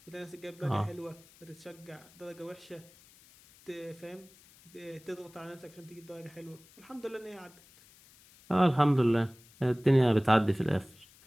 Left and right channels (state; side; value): noise; left; hiss, 25 dB below the sound